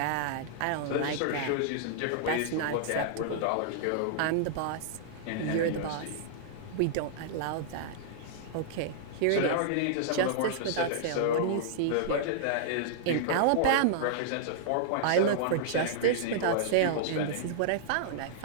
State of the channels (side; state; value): both; different; correlation -0.01